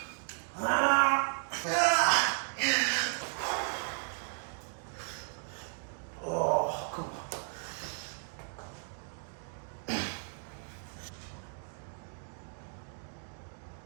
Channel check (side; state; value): left; silent; 55 dB below the other